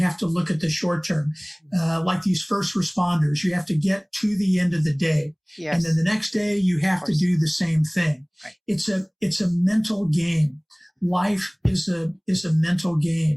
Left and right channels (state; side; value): identical; both; correlation 1.00